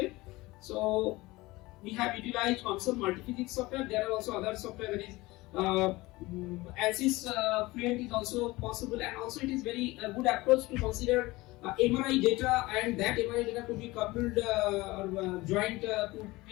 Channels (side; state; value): right; quieter; 20.6 dB